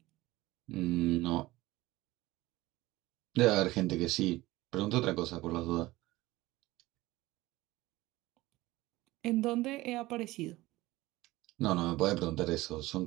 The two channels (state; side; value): quieter; left; 18.7 dB